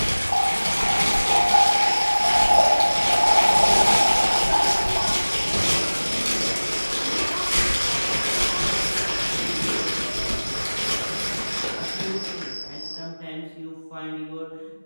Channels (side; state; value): both; inverted; correlation -1.00